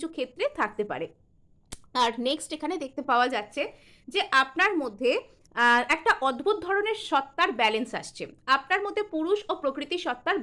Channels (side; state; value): both; identical; correlation 1.00